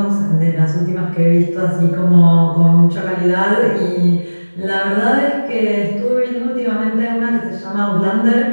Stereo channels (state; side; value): inverted; both; correlation -1.00